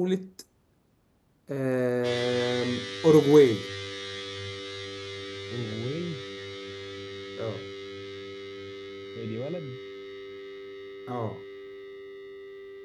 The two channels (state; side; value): identical; both; correlation 1.00